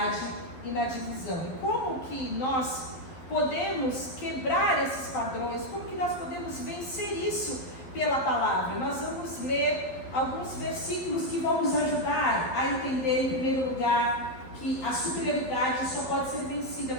e na divisão. E como que nós podemos quebrar esses padrões? Como que nós podemos vencer isso pela palavra? Nós vamos ler alguns versículos que vão nos ajudar a entender, em primeiro lugar, que a superioridade só pode ser vencida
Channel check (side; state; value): right; late; 11 ms